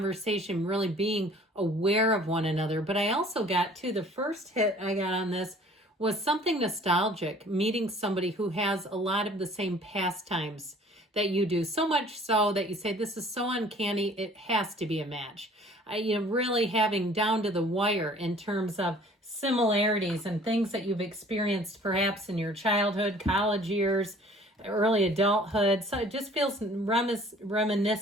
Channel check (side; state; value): both; normal; correlation 0.52